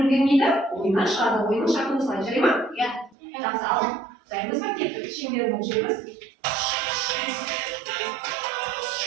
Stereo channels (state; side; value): drops out; left; at 3.2 s